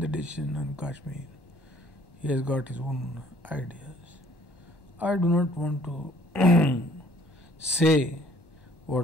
decision on Kashmir. He has got his own ideas. I do not want to say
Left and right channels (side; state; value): right; late; 1.1 ms